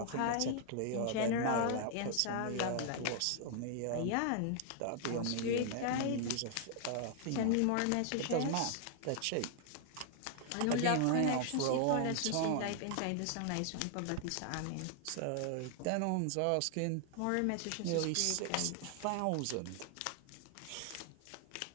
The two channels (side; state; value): both; different; correlation 0.00